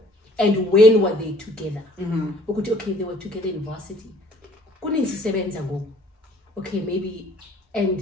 And when were they together? Okay, they were together in varsity. Okay, maybe,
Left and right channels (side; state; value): both; normal; correlation 0.56